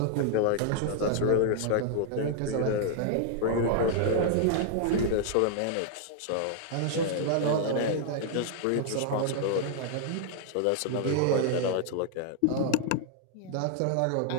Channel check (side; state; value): both; different; correlation 0.00